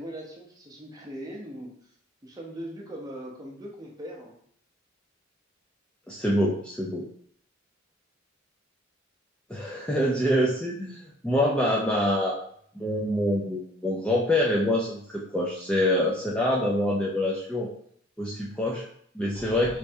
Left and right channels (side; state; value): both; normal; correlation 0.57